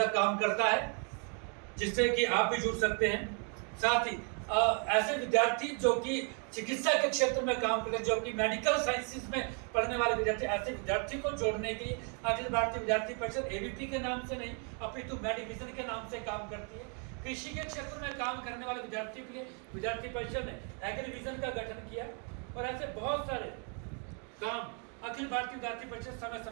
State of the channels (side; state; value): left; quieter; 39.6 dB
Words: काम करता है, जिससे कि आप भी जुड़ सकते हैं। साथ ही ऐसे विद्यार्थी जो कि चिकित्सा के क्षेत्र में काम करते हैं, जो कि मेडिकल साइंसेज में पढ़ने वाले विद्यार्थी, ऐसे विद्यार्थी को जोड़ने के लिए अखिल भारतीय विद्यार्थी परिषद एबीपी के नाम से नहीं अपितु मेडिविजन के नाम से काम करती है। कृषि के क्षेत्र में काम करने वाले विद्यार्थियों के लिए विद्यार्थी परिषद ने एग्रीविजन का गठन किया और ऐसे बहुत सारे काम अखिल भारतीय विद्यार्थी परिषद समय